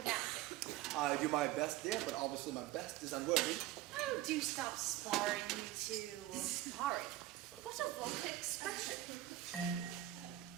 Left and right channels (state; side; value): quieter; left; 14.8 dB